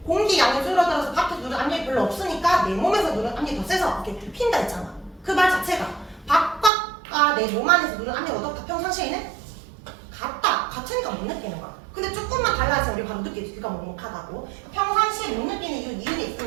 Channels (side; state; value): left; drops out; at 6.7 s